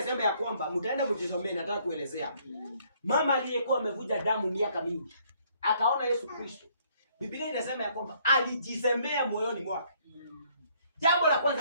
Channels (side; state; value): both; inverted; correlation -0.65